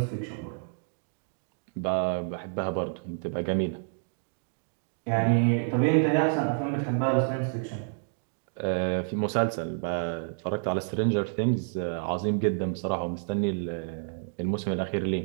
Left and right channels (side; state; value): left; silent; digital silence